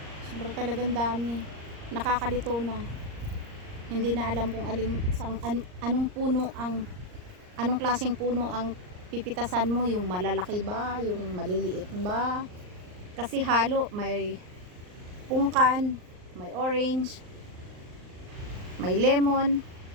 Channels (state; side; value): late; left; 38 ms